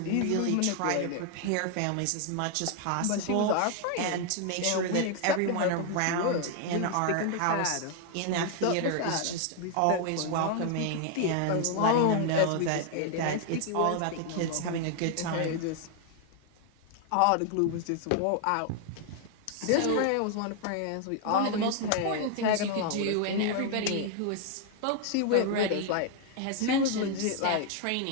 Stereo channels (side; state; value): both; different; correlation 0.00